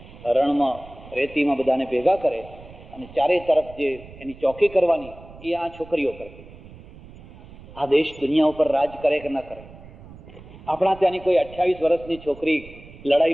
રણમાં રેતીમાં બધાને ભેગા કરે અને ચારે તરફ જે એની ચોકી કરવાની એ આ છોકરીઓ કરે. આ દેશ દુનિયા ઉપર રાજ કરે કે ન કરે? આપણા ત્યાંની કોઈ 28 વર્ષની છોકરી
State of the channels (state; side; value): noise; right; rumble, 19 dB below the sound